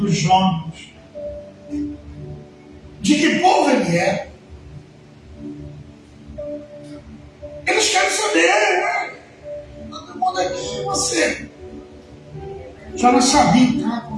Jonas. De que povo ele é. Eles querem saber, todo mundo aqui, você. Jonas sabia o que estava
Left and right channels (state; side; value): identical; both; correlation 1.00